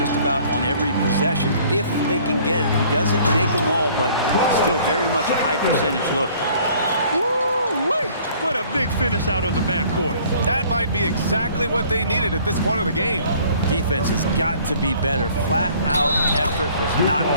about on every possession if they can get it. He doesn't make them all, but still very much a high percentage look. Woo-wee! What a big finish out of the backcourt. That might be exactly what they needed at this point of the game. Defense has got to be better. Flat out effort was not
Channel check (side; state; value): both; inverted; correlation -0.55